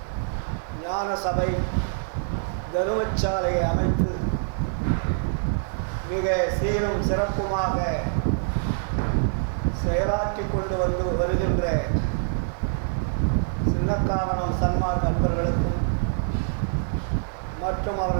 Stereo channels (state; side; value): silent; left; digital silence